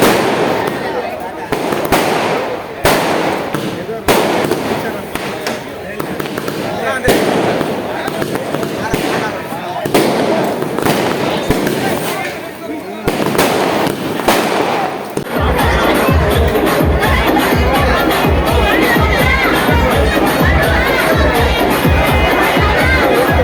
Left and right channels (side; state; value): both; identical; correlation 1.00